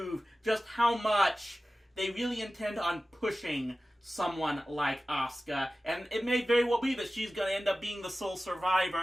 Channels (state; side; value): normal; both; correlation 0.96